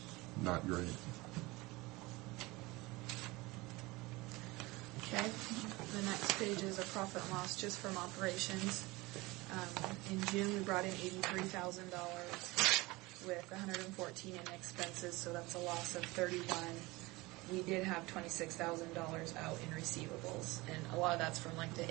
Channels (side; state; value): left; quieter; 22.2 dB